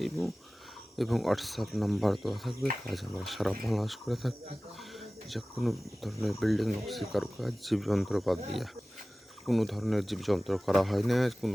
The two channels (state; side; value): normal; both; correlation 0.97